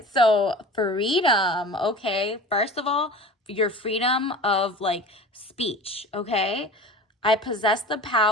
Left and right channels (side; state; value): both; normal; correlation 0.37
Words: so freedom. Okay, first of all, your freedom of speech. Okay, I possess the